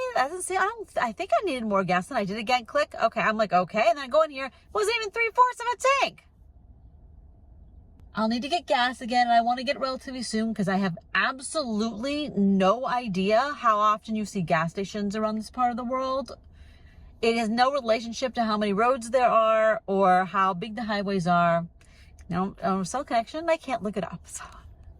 That doesn't seem, I think I needed more gas than I did. Again, click. Okay. I'm like, okay. And then I go in here, it wasn't even 3/4 of a tank. I'll need to get gas again, and I want to get relatively soon because I have absolutely no idea how often you see gas stations around this part of the world. It has no relationship to how many roads there are or how big the highways are. No, cell connection, I can't look it up. So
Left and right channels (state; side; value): identical; both; correlation 1.00